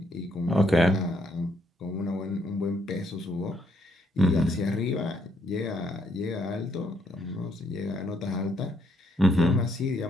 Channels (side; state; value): both; normal; correlation 0.72